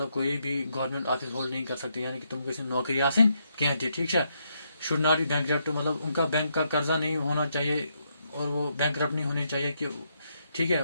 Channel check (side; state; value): both; inverted; correlation -0.78